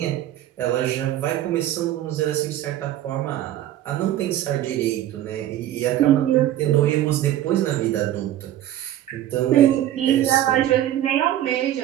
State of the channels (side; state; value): left; quieter; 12.7 dB